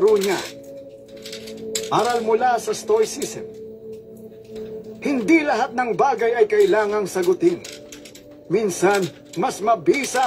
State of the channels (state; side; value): identical; both; correlation 1.00